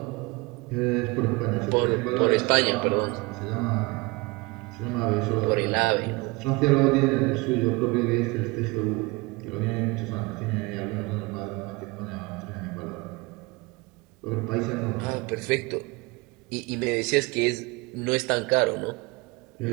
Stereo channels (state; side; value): quieter; left; 25.0 dB